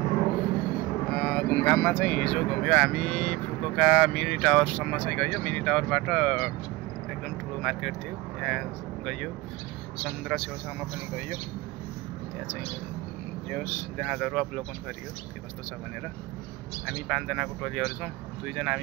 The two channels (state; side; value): quieter; left; 20.2 dB